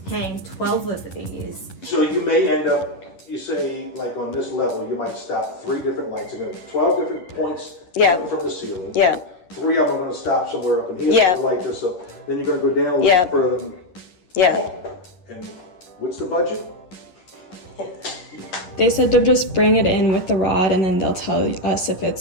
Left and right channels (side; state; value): right; late; 11 ms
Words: hang 12 of these. So you may end up, you say, like on this level, you might stop 3 different lights. You're going to 12 different points from the ceiling. Yeah. 3 of them are going to stop somewhere up in here Yeah. to light this up. Then you're going to go down a Yeah. little further. Yeah. And what's the budget? They said to just bring it in with the rod and then they'll tell us if